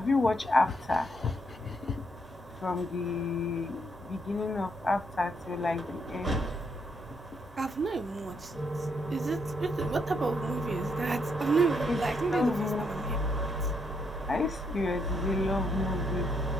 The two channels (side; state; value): both; normal; correlation 0.75